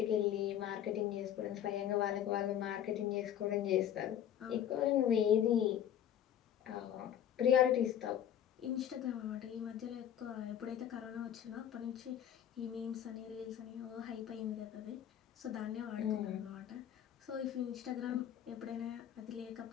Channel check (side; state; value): right; quieter; 10.2 dB